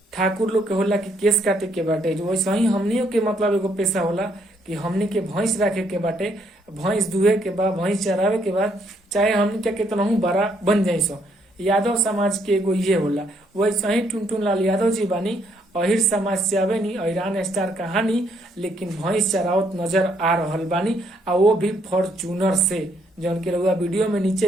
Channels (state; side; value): normal; both; correlation 0.71